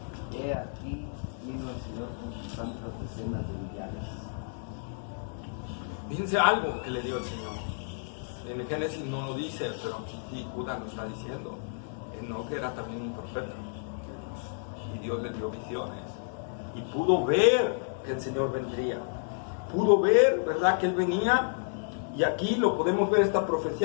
He aquí vino el Señor con sus santas decenas de millares. Fíjense algo que le dio el Señor. En el Génesis no lo dice, pero aquí Judas lo está diciendo. Enoc era también un profeta. Y Dios le dio visiones. Y pudo ver que el Señor vendría. Pudo ver, ¿verdad?, que Él venía. Y aquí lo podemos ver, esta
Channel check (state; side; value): silent; right; digital silence